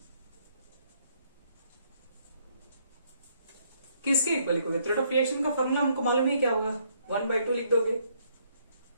किसके इक्वल लिखोगे, रेट ऑफ रिएक्शन का फॉर्मूला हमको मालूम ही क्या होगा, 1/2 लिख दोगे,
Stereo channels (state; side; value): inverted; both; correlation -0.69